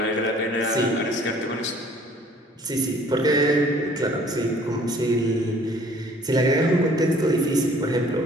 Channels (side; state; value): both; normal; correlation 0.55